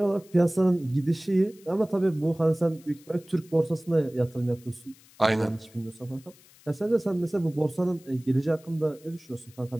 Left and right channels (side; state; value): left; noise; hiss, 26 dB below the sound